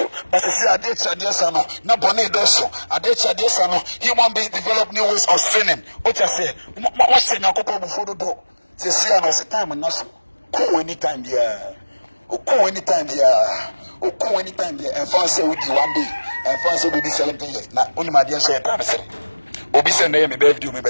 but see ade chade sa no na bone do so ade chade sa no human beings develop new ways of sinning o cha say what sin akoko before do say see am say time no so ko anytime there ko anytime there ko anytime there and for say we di one day and for say we di 17 years na only my dear say time say obi say na me birthday me be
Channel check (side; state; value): both; inverted; correlation -1.00